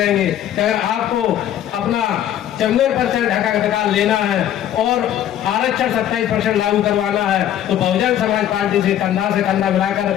कि अगर आपको अपना 54% हक अधिकार लेना है और आरक्षण 27% लागू करवाना है तो बहुजन समाज पार्टी से कंधा मिलाकर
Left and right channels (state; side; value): quieter; right; 11.2 dB